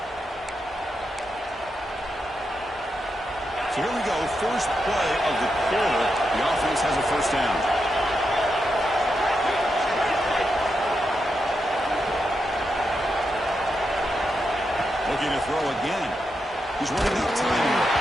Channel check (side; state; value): both; normal; correlation 0.85